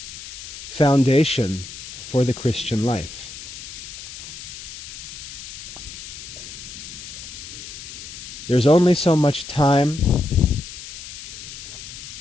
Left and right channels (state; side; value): noise; left; hiss, 12 dB below the sound